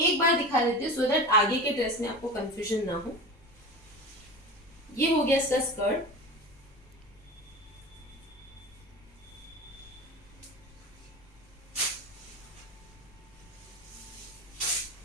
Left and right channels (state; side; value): normal; both; correlation 0.30